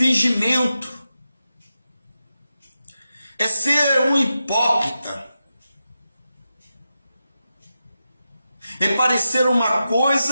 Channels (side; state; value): both; inverted; correlation -0.90